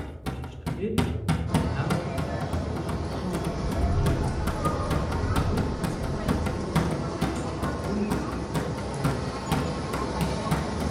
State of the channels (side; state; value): both; identical; correlation 1.00